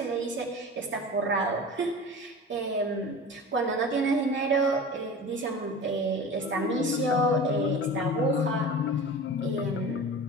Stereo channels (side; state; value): both; normal; correlation 0.35